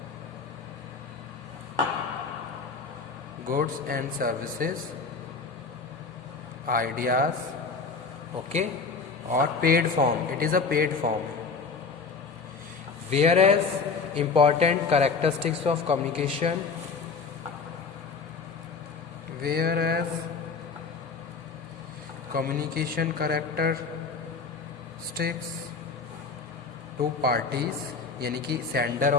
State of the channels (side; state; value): right; quieter; 4.8 dB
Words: goods and services, ideas, okay, और paid form, it is a paid form. Whereas important characteristics of communication, whereas communication characteristics two parties, यानी कि sender